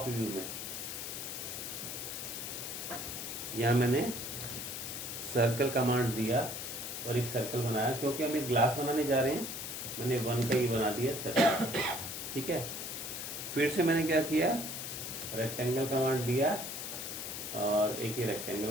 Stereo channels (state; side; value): noise; left; hiss, 6 dB below the sound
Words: व्यू में। यहाँ मैंने सर्कल कमांड दिया और एक सर्कल बनाया, क्योंकि हम एक ग्लास बनाने जा रहे हैं। मैंने 1 का ही बना दिया सर्कल, ठीक है। फिर से मैंने क्या किया, रेक्टेंगल कमांड दिया और एक ही